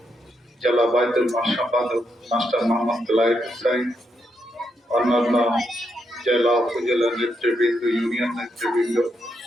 জেলা বাইতুল মাল সম্পাদক মাস্টার মোহাম্মদ লাইফ হোসেন, অন্যান্য জেলা উপজেলা নেতৃবৃন্দ, ইউনিয়ন নেতৃবৃন্দ,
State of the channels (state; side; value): normal; both; correlation 0.80